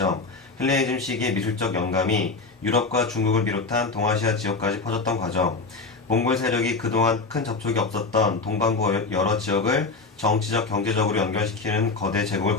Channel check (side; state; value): right; quieter; 3.8 dB